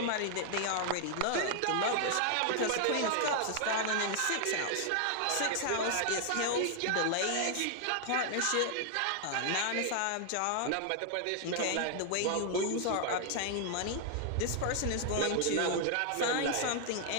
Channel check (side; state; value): both; different; correlation 0.00